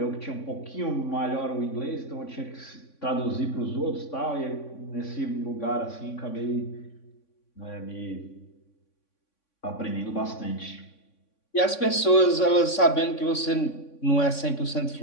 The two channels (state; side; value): late; right; 3.6 ms